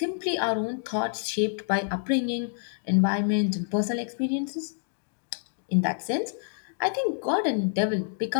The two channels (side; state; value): right; silent; digital silence